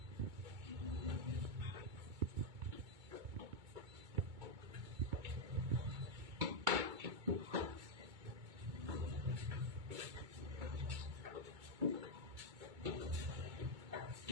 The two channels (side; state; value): left; late; 2.2 ms